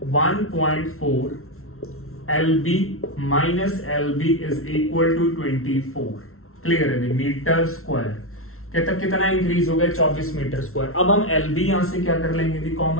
1.4 LB minus LB is equal to 24. Clear है, मीटर स्क्वायर. कहता कितना इंक्रीज हो गया? 24 मीटर स्क्वायर. अब हम LB यहां से क्या कर लेंगे?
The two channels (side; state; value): right; late; 0.62 ms